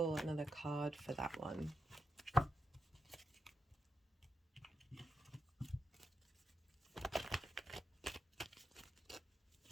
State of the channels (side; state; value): both; normal; correlation 0.86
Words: another card for that one.